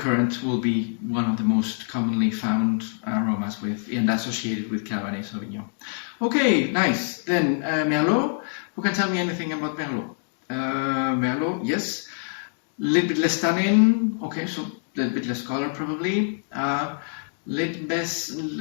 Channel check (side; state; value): right; silent; digital silence